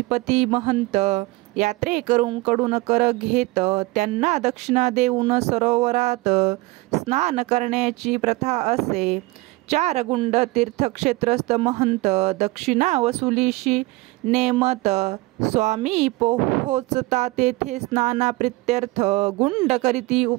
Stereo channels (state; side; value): quieter; left; 21.9 dB